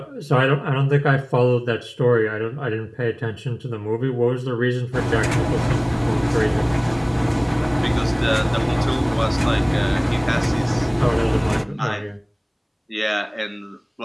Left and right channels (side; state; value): both; identical; correlation 1.00